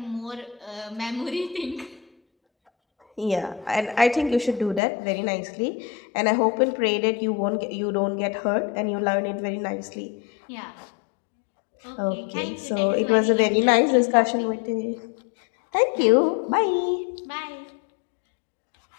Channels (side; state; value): right; drops out; at 4.8 s